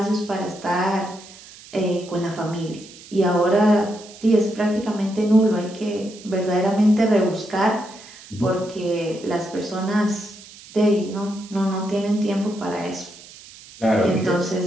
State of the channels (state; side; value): noise; right; hiss, 19 dB below the sound